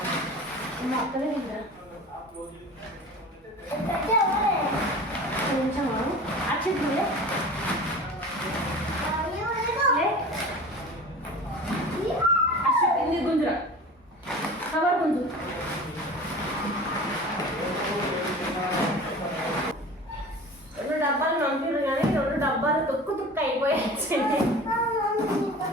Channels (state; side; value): normal; both; correlation 0.37